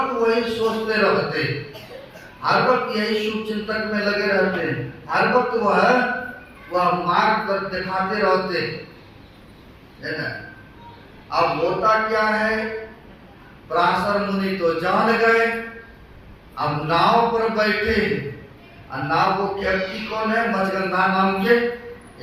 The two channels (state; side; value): identical; both; correlation 1.00